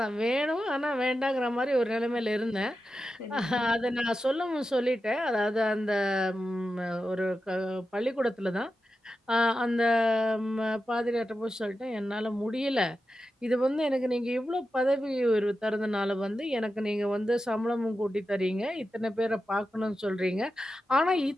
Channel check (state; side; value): normal; both; correlation 0.90